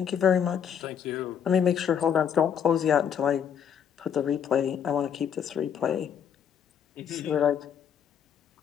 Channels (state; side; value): quieter; right; 8.1 dB